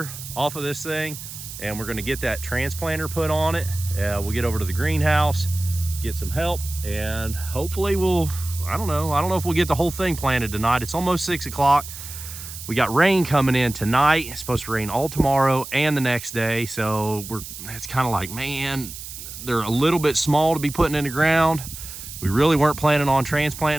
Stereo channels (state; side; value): noise; right; hiss, 11 dB below the sound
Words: off of this thing, and we're gonna get that transplanter put on it. We'll get over to the greenhouse, get some help, and hopefully I don't know if we'll get the whole thing planted tonight. It's almost 6 o'clock. We got rain coming in tonight. It's supposed to rain all tomorrow and the next day. So it's kind of like, man, they're a little bit small to be putting in the ground. We really weren't planning on transplanting